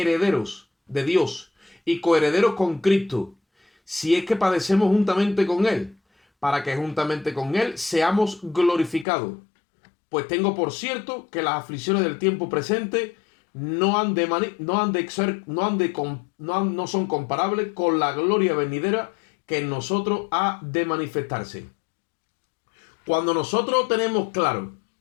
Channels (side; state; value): right; drops out; at 9.1 s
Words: de Dios y coherederos con Cristo, si es que padecemos juntamente con Él, para que juntamente con Él seamos glorificados. Pues tengo por cierto que las aflicciones del tiempo presente no son comparables con la gloria venidera que en nosotros ha de manifestarse. Cuando nosotros tenemos claro